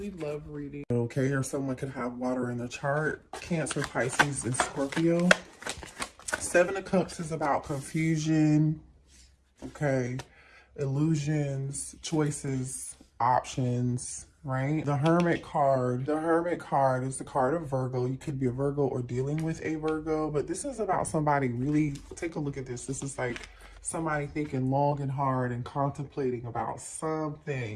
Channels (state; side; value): identical; both; correlation 1.00